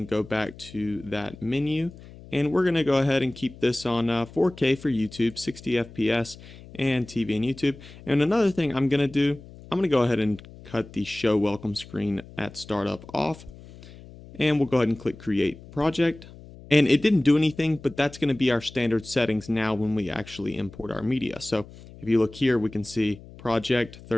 go back to that menu, and we're going to go ahead and keep this on 4K for YouTube, 60 FPS, and TV and YouTube. And another thing I'm going to do, I'm going to go ahead and cut the Show Welcome screen at startup off, and we'll go ahead and click Create Project. And it didn't do anything, but that's going to be our standard settings now when we actually import our media. So if you look here, we can see project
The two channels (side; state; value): left; noise; hum, 18 dB below the sound